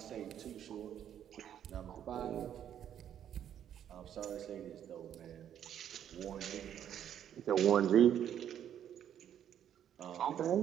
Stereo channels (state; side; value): quieter; left; 9.9 dB